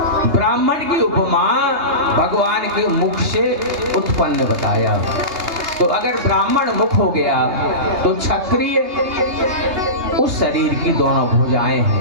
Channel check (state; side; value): late; left; 2.9 ms